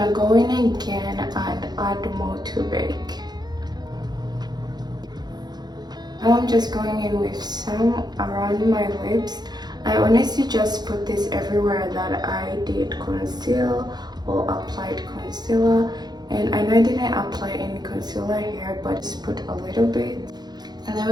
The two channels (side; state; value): left; late; 0.20 ms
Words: go in again and add more to bake. Now I'm just going in with some around my lips. I honestly just put this everywhere that I did conceal or applied concealer. And I know I didn't apply any concealer here, but just put a little bit. And then